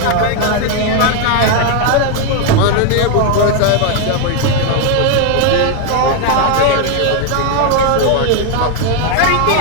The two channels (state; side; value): different; both; correlation 0.01